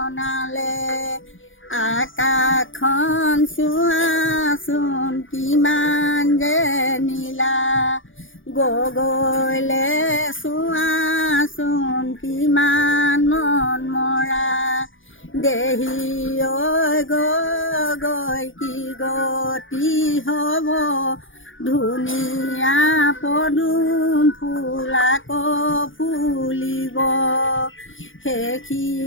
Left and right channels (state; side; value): late; right; 0.57 ms